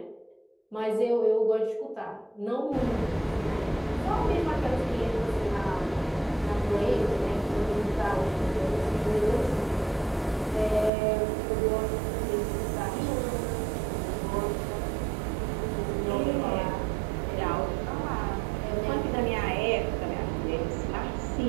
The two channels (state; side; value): drops out; left; at 10.9 s